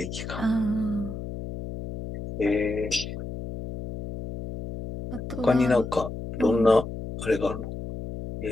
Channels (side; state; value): left; noise; hum, 8 dB below the sound